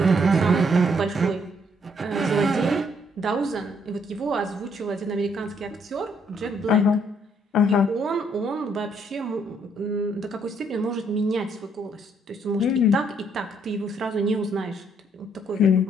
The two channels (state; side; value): normal; both; correlation 0.69